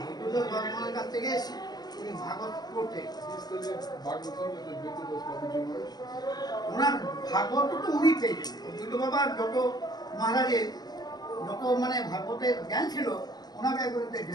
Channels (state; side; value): late; right; 0.19 ms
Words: ভগবানের কাছ থেকে উনি ভাগবত করতেন। He studied Bhagavatam with Advaita Das Babaji Maharaj. ওনার ভাগবত তো উনি পেয়েছেন। অদ্বৈত বাবার যত মহারাজের যত মানে ভাগবতের জ্ঞান ছিল ওনাকে একবারে